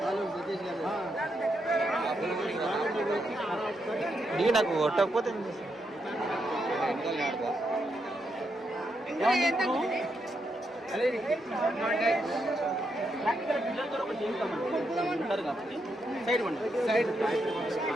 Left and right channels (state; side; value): normal; both; correlation 0.81